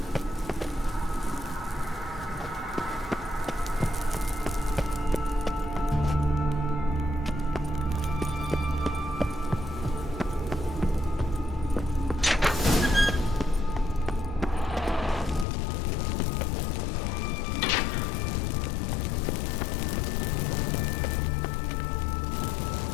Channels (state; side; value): drops out; right; at 15.5 s